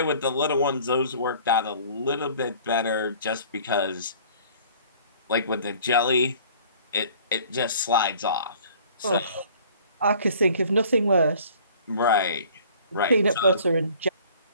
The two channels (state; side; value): inverted; both; correlation -0.51